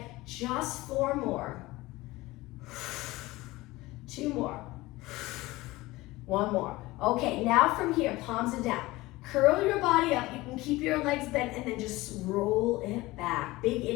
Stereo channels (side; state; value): right; quieter; 19.7 dB